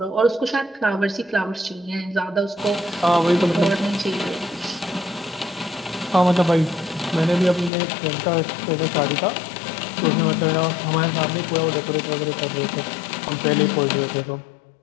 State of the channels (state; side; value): drops out; right; at 7.7 s